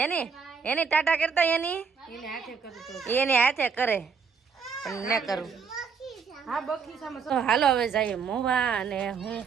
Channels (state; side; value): quieter; left; 5.9 dB